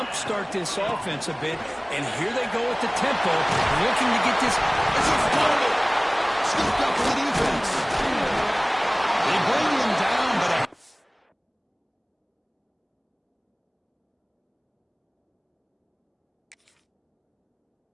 this offense a bit, and here they go with the tempo, looking to get this. It's a fumble! Scooped up for the defense. They bring him down, but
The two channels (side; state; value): both; identical; correlation 1.00